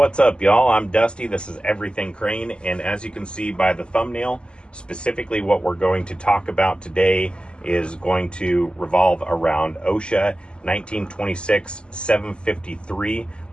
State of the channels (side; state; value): right; late; 0.051 ms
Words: up, y'all? I'm Dusty. This is Everything Crane, and as you can see by the thumbnail, specifically what we're going to talk about today is going to revolve around OSHA 1926-753